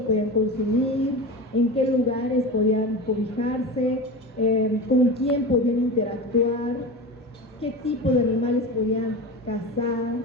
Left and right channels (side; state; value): both; normal; correlation 0.27